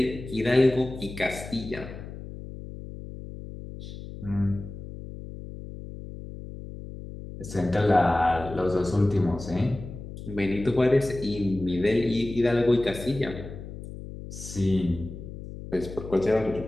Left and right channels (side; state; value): left; noise; hum, 12 dB below the sound